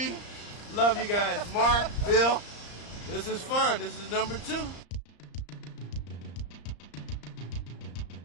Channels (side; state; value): right; late; 34 ms